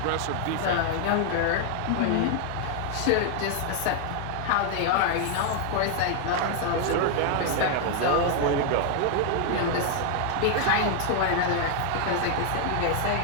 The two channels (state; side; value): different; both; correlation 0.00